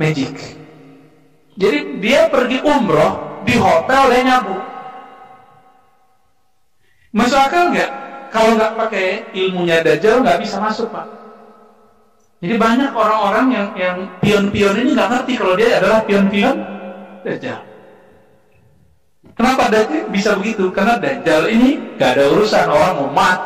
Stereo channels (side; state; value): both; identical; correlation 1.00